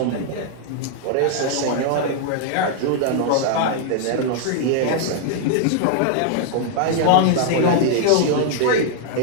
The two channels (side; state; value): both; different; correlation -0.01